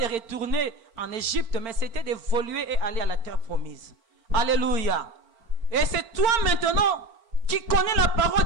retourner en Égypte, mais c'était d'évoluer et aller à la terre promise. Alléluia. Et c'est toi maintenant qui connais la parole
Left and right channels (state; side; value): late; left; 4.4 ms